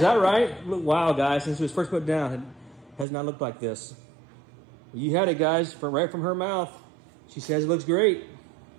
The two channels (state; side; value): drops out; left; at 3.1 s